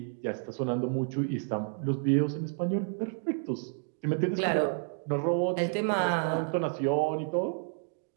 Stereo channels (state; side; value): silent; left; 58 dB below the other